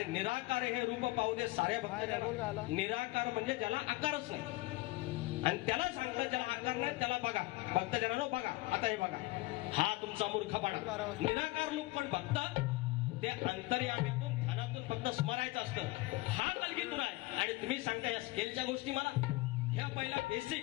निराकार हे रूप पाहू दे साऱ्या भक्तांना. निराकार म्हणजे ज्याला आकारच नाही, आणि त्याला सांगतात ज्याला आकार नाही त्याला बघा, भक्तजनांनो बघा. आता हे बघा, हा तुमचा मूर्खपणा. निराकार लोक पण भक्त ते अंतर्यामीतून ध्यानातून फक्त स्मरायचं असतं. हा कलगीतुरा आहे, आणि तुम्ही सांगता या स्केलच्या गोष्टी मला. ह्या पहिला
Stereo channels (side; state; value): right; quieter; 20.6 dB